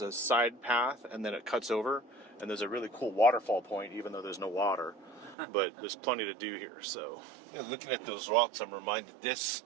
a side path, and then it cuts over, and there's a really cool waterfall point, even though there's no water. But there's plenty to do here. So Looking at those rocks, I'm reminded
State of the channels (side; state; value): left; drops out; at 5.4 s